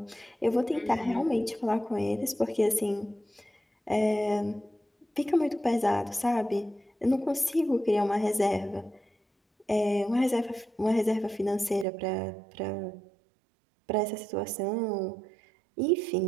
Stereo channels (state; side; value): drops out; left; at 11.9 s